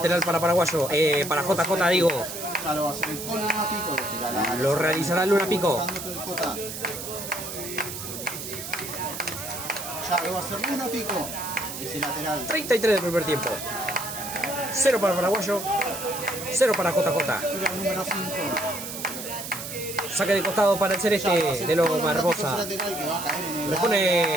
para Paraguayo. Para JJ digo. Ya lo va a hacer el con Luna Pico. Lo realizará Luna Pico. Ya lo va a hacer Luna Pico. Ese lateral. 33 del primer tiempo. 0 para Paraguayo. 0 para JJ. Tira el número 5. Saque de costado para el Celeste de Loma Hermosa. Le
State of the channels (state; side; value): noise; right; hiss, 8 dB below the sound